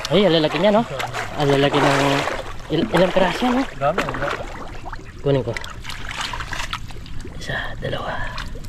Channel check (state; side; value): identical; both; correlation 1.00